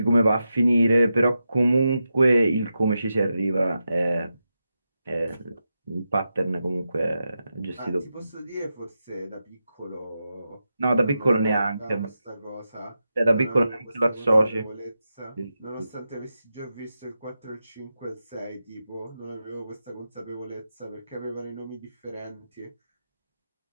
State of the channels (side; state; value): both; inverted; correlation -0.89